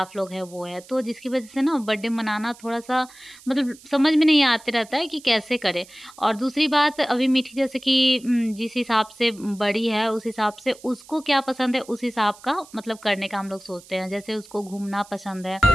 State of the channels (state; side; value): noise; right; hiss, 22 dB below the sound